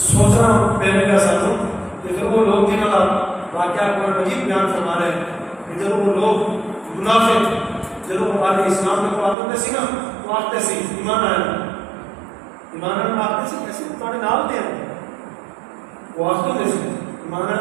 پہلے کا ساتھوں کہ پھر وہ لوگ جنہوں کا واقعہ قرآن مجید بیان فرما رہے ہیں کہ جب وہ لوگ منافق جب وہ آگے اسلام میں آتے سی نا تو آتے سی ایمان آئے، ایمان آئے آتے سی کیسے تمہارے نام دے وہ آتے سی ایمان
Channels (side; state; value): left; drops out; at 9.3 s